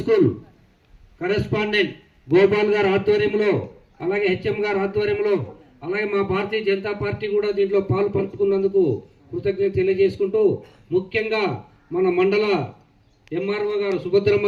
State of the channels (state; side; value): identical; both; correlation 1.00